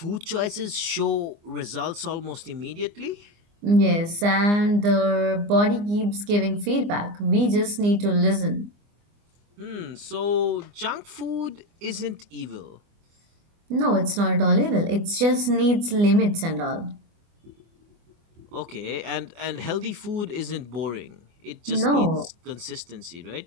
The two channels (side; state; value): left; late; 24 ms